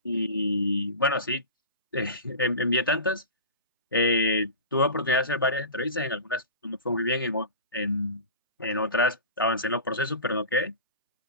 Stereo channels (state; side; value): inverted; both; correlation -0.31